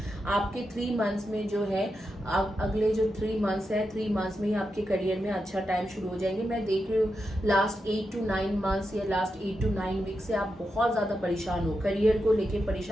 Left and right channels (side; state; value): both; normal; correlation 0.87